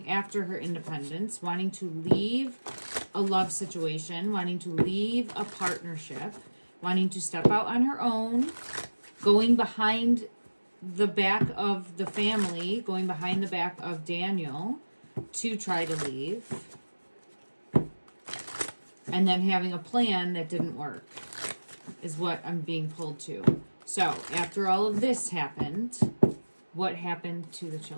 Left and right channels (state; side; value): inverted; both; correlation -1.00